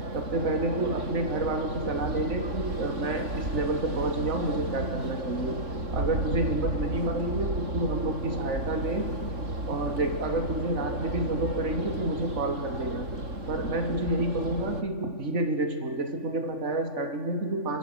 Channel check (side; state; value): left; late; 3.5 ms